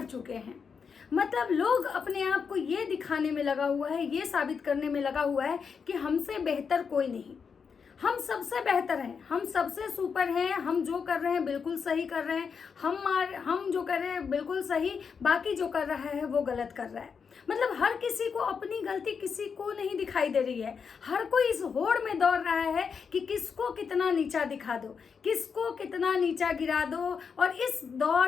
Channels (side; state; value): right; quieter; 6.1 dB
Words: चुके हैं। मतलब लोग अपने आप को ये दिखाने में लगा हुआ है, ये साबित करने में लगा हुआ है कि हमसे बेहतर कोई नहीं, हम सबसे बेहतर हैं, हम सबसे सुपर हैं, हम जो कर रहे हैं बिल्कुल सही कर रहे हैं, हम जो कर रहे हैं बिल्कुल सही, बाकी जो कर रहा है वो गलत कर रहा है। मतलब हर किसी को अपनी गलती किसी को नहीं दिखाई दे रही है। हर कोई इस होड़ में दौड़ रहा है कि किसको कितना नीचा दिखा दो, किसको कितना नीचा गिरा दो। और इस